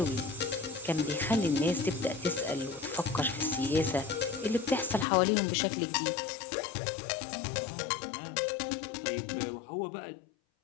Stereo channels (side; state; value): right; drops out; at 5.1 s